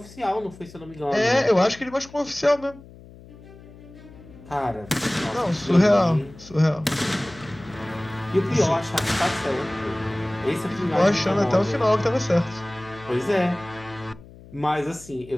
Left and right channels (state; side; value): noise; left; hum, 20 dB below the sound